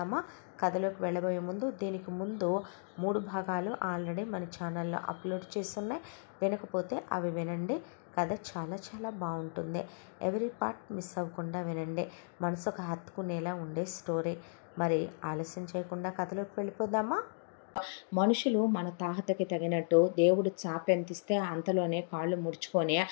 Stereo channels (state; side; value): silent; right; digital silence